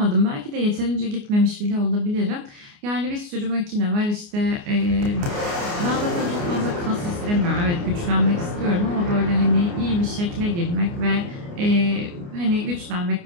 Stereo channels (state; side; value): late; left; 29 ms